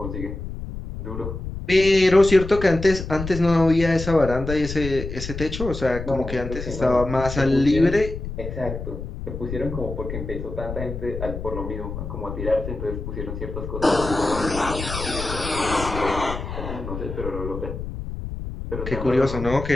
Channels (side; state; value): left; noise; rumble, 7 dB below the sound